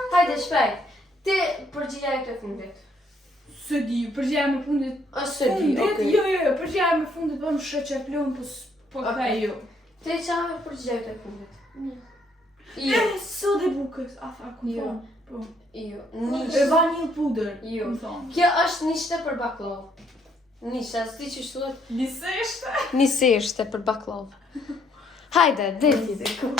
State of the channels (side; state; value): both; normal; correlation 0.69